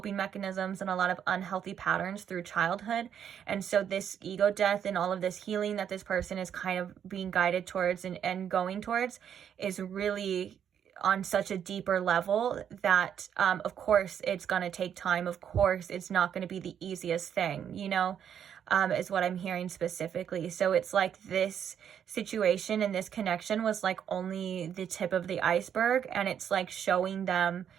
mechanisms and a lot of unhealthy patterns through childhood. And so this ego death and all of this healing that this person is kind of being guided towards and going towards is really on such a deeper level that, of course, it's going to take time. Of course, it's not going to be the easiest thing, you know, is what I'm hearing specifically. So it's like this situation and this connection was like only the tip of the iceberg, and it's like showing them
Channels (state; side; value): quieter; left; 8.8 dB